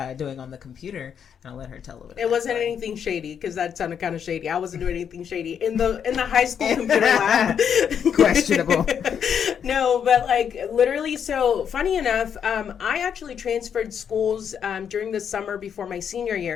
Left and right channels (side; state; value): right; quieter; 7.9 dB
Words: doing on the computer, and I'll let her tell a little bit. It wasn't anything shady, because that sounded kind of shady. I wasn't doing anything shady in the high school computer lab. Questionable. No, but literally, so funny enough, I actually transferred schools during the summer before my senior